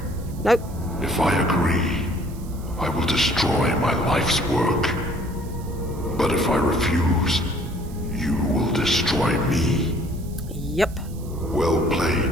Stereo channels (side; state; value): right; noise; hiss, 22 dB below the sound